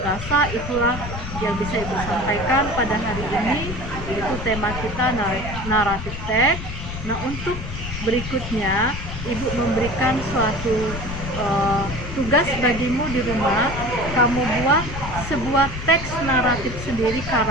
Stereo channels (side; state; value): left; noise; rumble, 7 dB below the sound